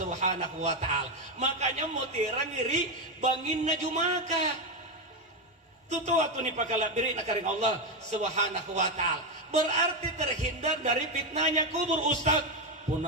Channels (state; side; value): normal; both; correlation 0.09